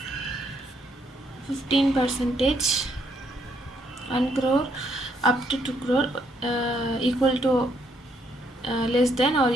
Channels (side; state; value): both; normal; correlation 0.72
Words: 15%, 1 crore up to 2 crore, equal to less than or